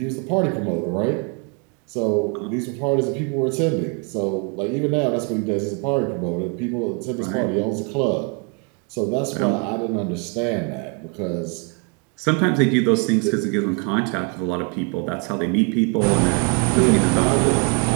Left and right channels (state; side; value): quieter; left; 34.8 dB